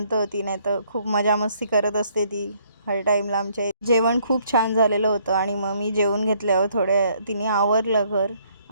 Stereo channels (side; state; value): both; inverted; correlation -0.66